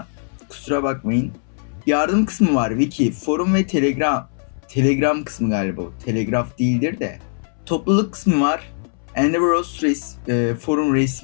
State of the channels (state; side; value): silent; right; 65 dB below the other